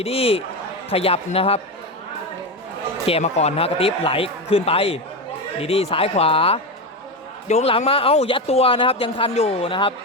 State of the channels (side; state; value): both; normal; correlation 0.16